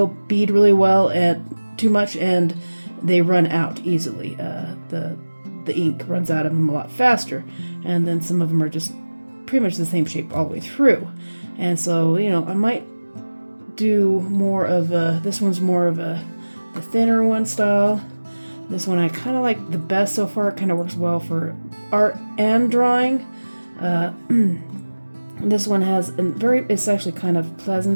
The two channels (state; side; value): inverted; both; correlation -1.00